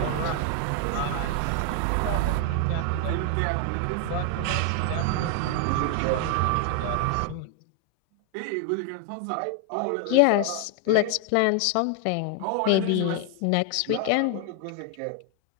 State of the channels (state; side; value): different; both; correlation 0.00